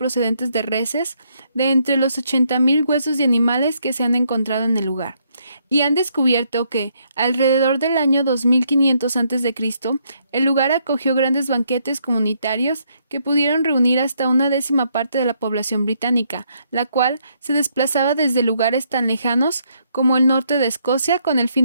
de reses de entre los 80.000 huesos de animales que se han encontrado en el lugar, y han descubierto que, alrededor del año 2500 a.C., el lugar acogió grandes banquetes comunitarios que pudieron reunir hasta una 10ª parte de la población británica, la cual se desplazaba desde lugares tan lejanos como el norte de Escocia con el fin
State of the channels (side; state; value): both; inverted; correlation -0.73